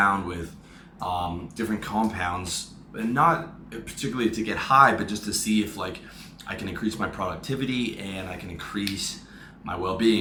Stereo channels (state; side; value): identical; both; correlation 1.00